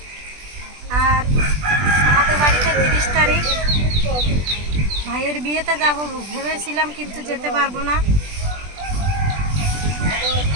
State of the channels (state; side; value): late; left; 20 ms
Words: আর আমাদের বাড়িতে 30 তারিখ। ভাইয়ের বিয়েতে যাব ভেবেছিলাম, কিন্তু যেতে পারবো না।